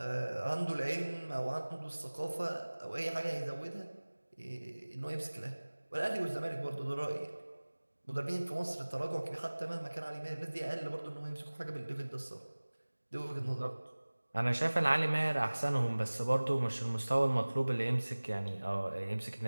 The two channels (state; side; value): inverted; both; correlation -1.00